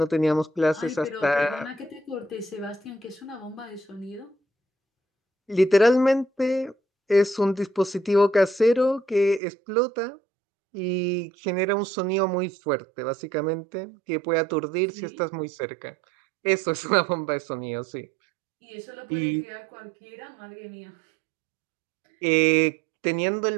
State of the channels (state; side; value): drops out; left; at 9.4 s